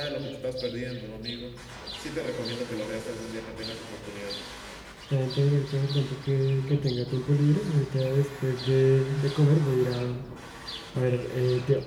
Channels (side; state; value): both; identical; correlation 1.00